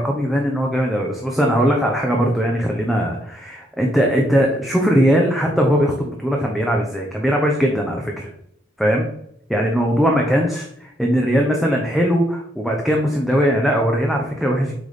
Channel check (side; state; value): both; normal; correlation 0.75